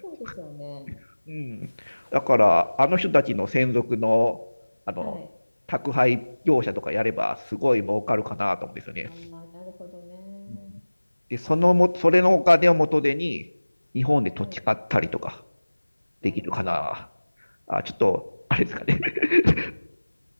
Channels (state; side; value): inverted; both; correlation -1.00